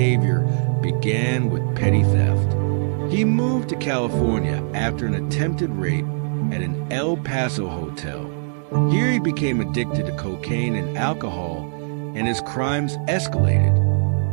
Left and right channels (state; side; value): silent; left; digital silence